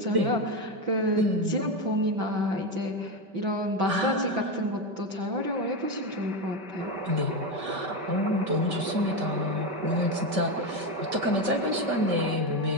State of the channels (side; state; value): left; late; 5.2 ms